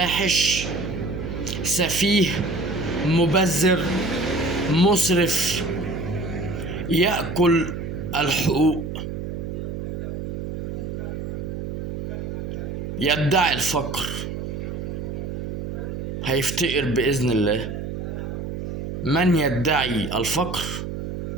سفيه، مبذر، مسرف، يأكل الحقوق، يدعي الفقر، هيفتقر بإذن الله. من يدعي الفقر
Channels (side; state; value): right; noise; hum, 5 dB below the sound